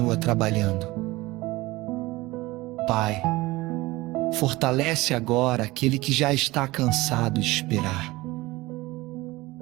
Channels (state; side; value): quieter; left; 20.2 dB